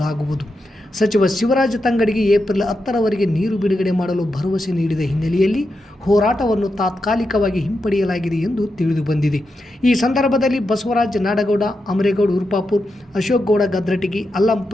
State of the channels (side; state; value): both; normal; correlation 0.87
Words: ಸಚಿವ ಶಿವರಾಜ ತಂಗಡಗಿ ಏಪ್ರಿಲ್ 10ರವರೆಗೆ ನೀರು ಬಿಡುಗಡೆ ಮಾಡಲು ಭರವಸೆ ನೀಡಿದ ಹಿನ್ನೆಲೆಯಲ್ಲಿ ಹೋರಾಟವನ್ನು ತಾತ್ಕಾಲಿಕವಾಗಿ ಹಿಂಪಡೆಯಲಾಗಿದೆ ಎಂದು ತಿಳಿದು ಬಂದಿದೆ. ಈ ಸಂದರ್ಭದಲ್ಲಿ ಬಸವರಾಜ ನಾಡಗೌಡ, ಅಮರೇಗೌಡ ಉರ್ಪಾಪುರ್, ಅಶೋಕ್ ಗೌಡ ಗದ್ರಟಗಿ, ಅಲ್ಲಂ